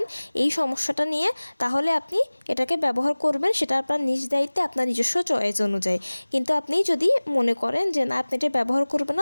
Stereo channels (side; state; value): both; inverted; correlation -1.00